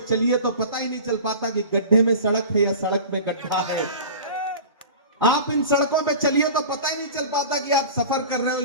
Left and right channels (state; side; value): inverted; both; correlation -0.36